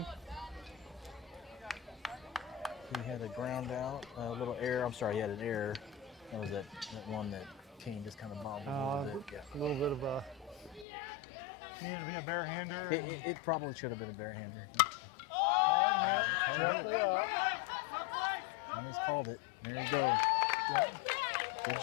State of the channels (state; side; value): drops out; right; at 10.9 s